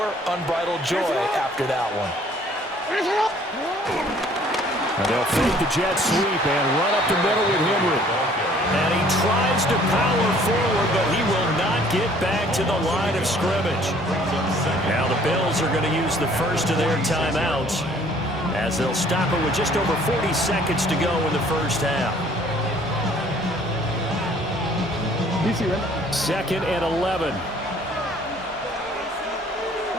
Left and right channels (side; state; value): both; normal; correlation 0.57